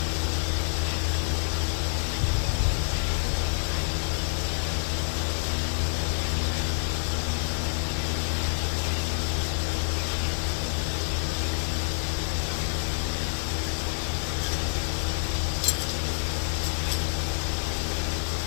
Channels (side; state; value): right; silent; digital silence